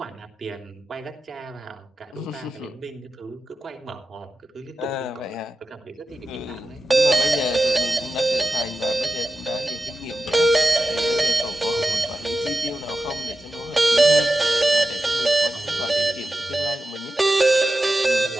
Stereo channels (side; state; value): both; normal; correlation 0.91